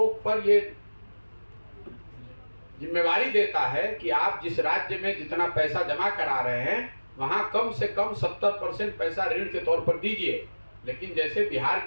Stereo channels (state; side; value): inverted; both; correlation -1.00